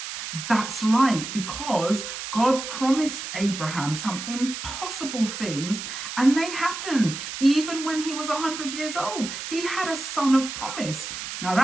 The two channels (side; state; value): right; noise; hiss, 7 dB below the sound